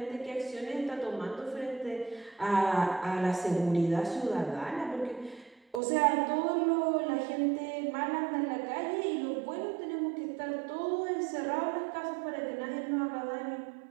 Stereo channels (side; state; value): left; drops out; at 5.8 s